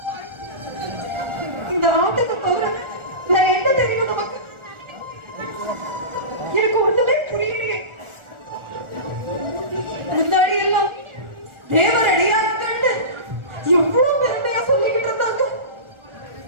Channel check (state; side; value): late; left; 1.4 ms